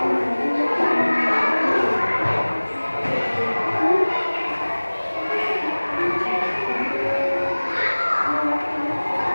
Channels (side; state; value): both; inverted; correlation -1.00